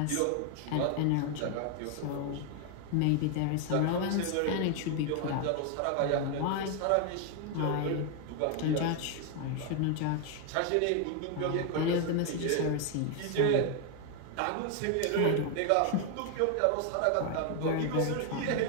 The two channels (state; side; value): different; both; correlation 0.01